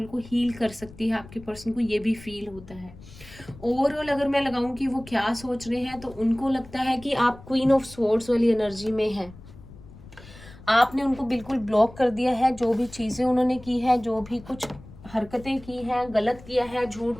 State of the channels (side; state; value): left; noise; rumble, 19 dB below the sound